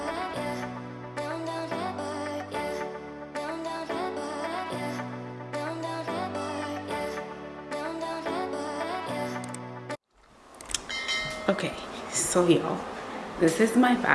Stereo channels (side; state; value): both; identical; correlation 1.00